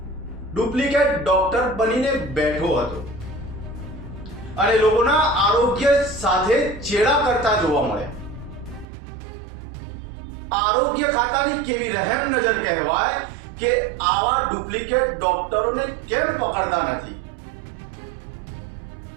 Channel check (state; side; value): drops out; left; at 8.8 s